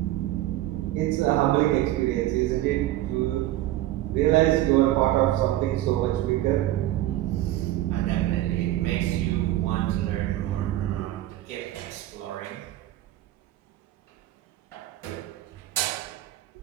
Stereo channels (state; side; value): quieter; left; 14.9 dB